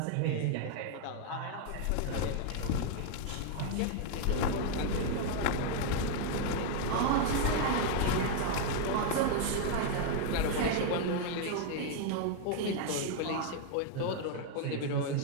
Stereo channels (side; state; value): both; different; correlation 0.00